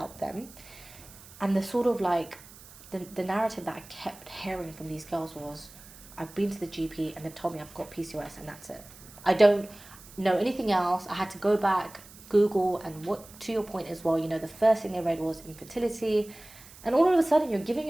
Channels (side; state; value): right; noise; hiss, 20 dB below the sound